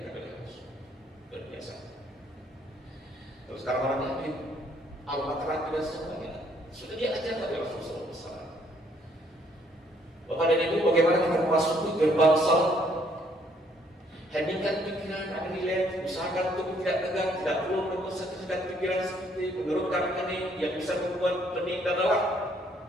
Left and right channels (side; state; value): both; normal; correlation 0.67